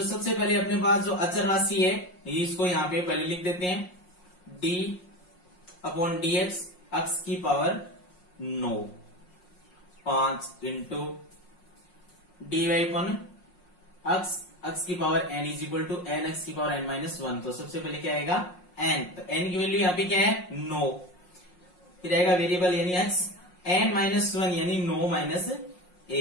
सबसे पहले अपने पास जो अचर राशि है, ये इसको यहाँ पे पहले लिख देते हैं d/dx x की पावर 9, 5 इंटू dy/x x की power n is equal to n x की पावर n माइनस 1। तो सबसे पहले क्या आएगा n, तो n की वैल्यू यहाँ पे क्या है 9, फिर आएगा वेरिएबल यानी x n माइनस 1 यानी 9 माइनस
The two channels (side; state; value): right; late; 5.5 ms